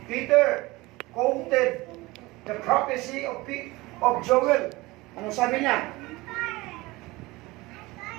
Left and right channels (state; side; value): quieter; left; 21.4 dB